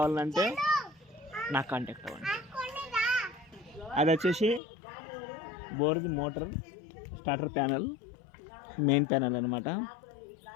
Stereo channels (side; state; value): right; drops out; at 4.6 s